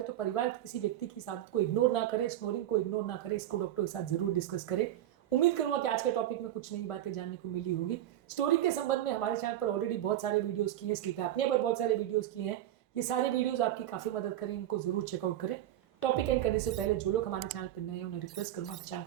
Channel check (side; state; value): left; quieter; 12.6 dB